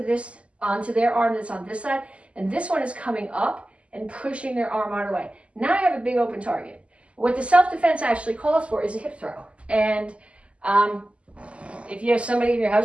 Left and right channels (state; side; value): late; left; 0.059 ms